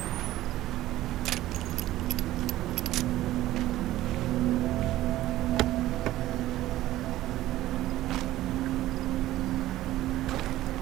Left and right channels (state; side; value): quieter; left; 15.1 dB